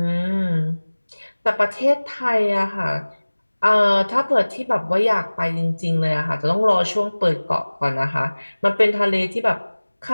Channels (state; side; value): inverted; both; correlation -1.00